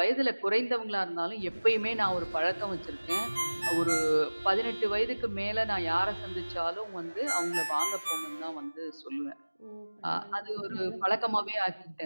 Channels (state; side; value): inverted; both; correlation -1.00